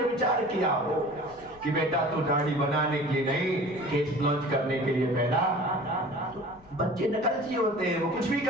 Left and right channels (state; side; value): noise; left; rumble, 26 dB below the sound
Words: विचार किया हो कि बेटा तू दाढ़ी बनाने के लिए नहीं, केस लॉन्च करने के लिए पैदा। बच्चे नकलची होते हैं, वो कुछ भी